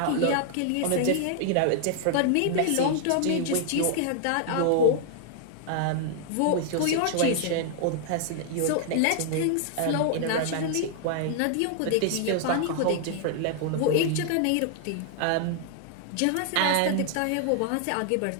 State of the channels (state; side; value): different; both; correlation -0.01